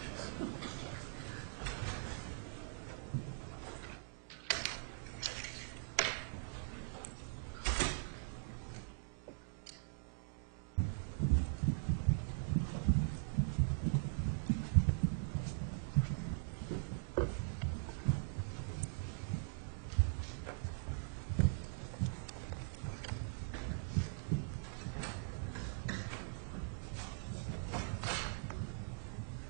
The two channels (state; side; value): silent; left; digital silence